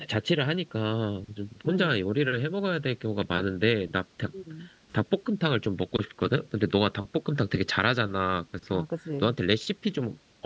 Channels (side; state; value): both; identical; correlation 1.00